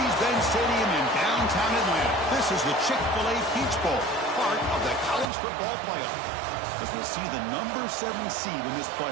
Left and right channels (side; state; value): left; drops out; at 5.3 s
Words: Stadium in downtown Atlanta. This is the Chick-fil-A Peach Bowl, part of the college football playoff. As we'll see the number 7 seed in this